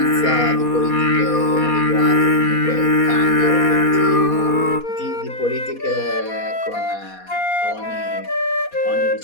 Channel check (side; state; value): right; late; 4.2 ms